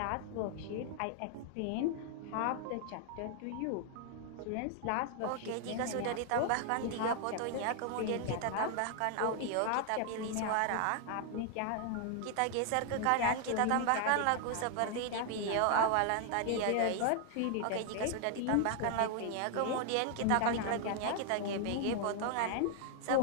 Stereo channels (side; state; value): both; different; correlation 0.00